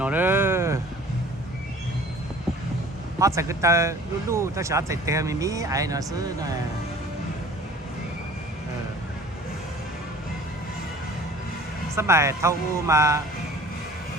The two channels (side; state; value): both; normal; correlation 0.47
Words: đó họ sẽ cái ta lu ta sẽ chạy theo mình ai nó xứ này sắp bài thâu mà